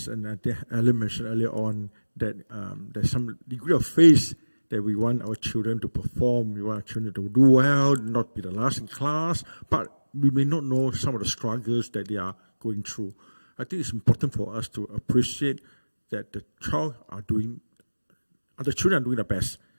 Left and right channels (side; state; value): both; inverted; correlation -1.00